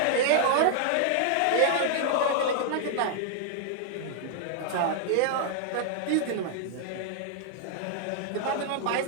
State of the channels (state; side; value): different; both; correlation -0.01